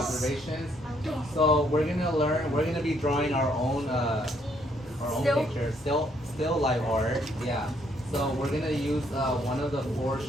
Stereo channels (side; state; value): both; normal; correlation 0.70